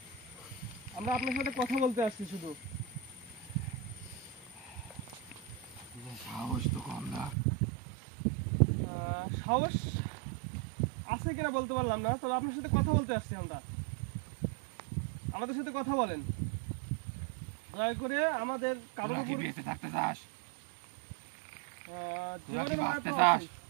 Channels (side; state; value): left; drops out; at 7.4 s